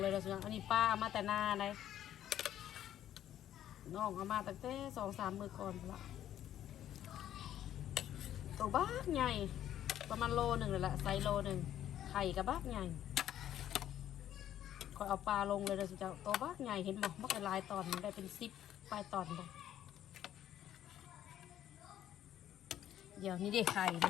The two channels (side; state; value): right; quieter; 11.4 dB